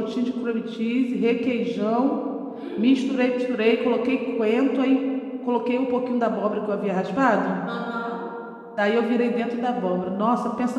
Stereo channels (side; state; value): both; identical; correlation 1.00